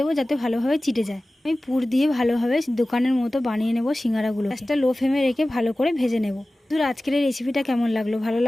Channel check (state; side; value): normal; both; correlation 0.97